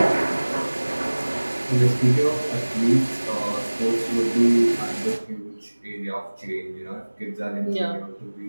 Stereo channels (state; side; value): inverted; both; correlation -1.00